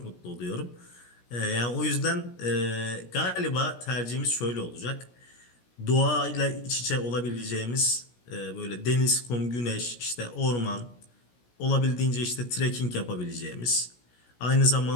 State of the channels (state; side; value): late; right; 17 ms